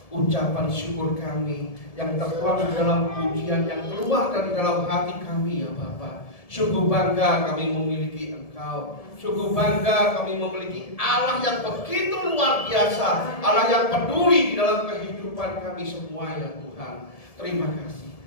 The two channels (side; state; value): right; late; 1.7 ms